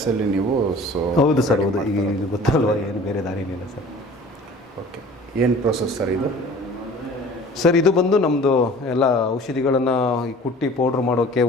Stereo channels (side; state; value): both; normal; correlation 0.46